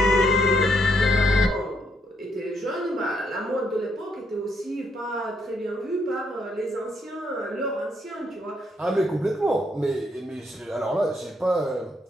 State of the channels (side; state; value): both; normal; correlation 0.75